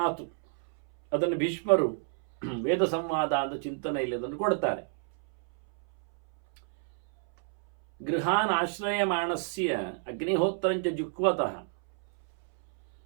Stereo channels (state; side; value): silent; left; 59 dB below the other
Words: ಅದನ್ನು ಭೀಷ್ಮರು ವೇದ ಸಂವಾದ ಅಂತ ಚಿಂತನೆಯಲ್ಲಿ ಅದನ್ನು ಕೊಡ್ತಾರೆ. ಗೃಹಾನ್ ಆಶ್ರಯಮಾಣಸ್ಯ ಅಗ್ನಿಹೋತ್ರಂಚ ಜುಕ್ವತಃ